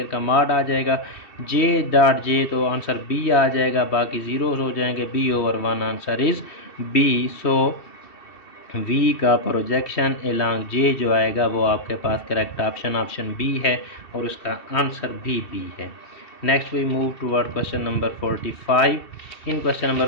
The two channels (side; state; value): right; late; 2.7 ms